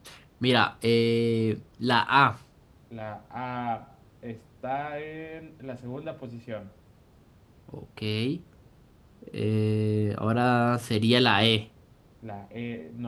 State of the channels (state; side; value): identical; both; correlation 1.00